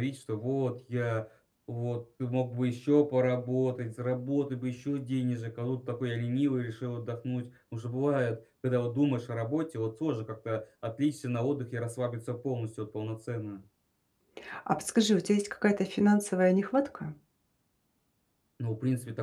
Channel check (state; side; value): identical; both; correlation 1.00